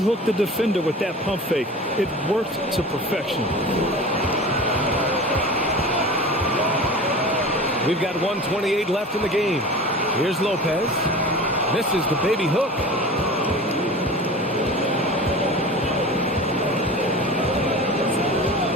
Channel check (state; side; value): normal; both; correlation 0.36